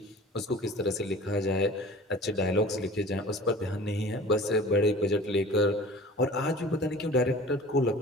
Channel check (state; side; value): normal; both; correlation 0.43